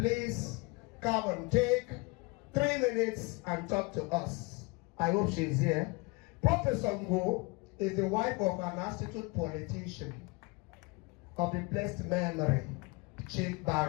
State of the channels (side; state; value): right; quieter; 26.4 dB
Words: come and take 3 minutes and talk to us. I hope she's here. Professor Ungo is the wife of an astute politician of the blessed memory, Chief